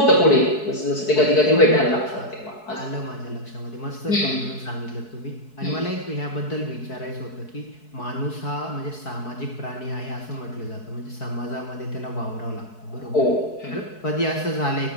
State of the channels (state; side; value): late; right; 4.7 ms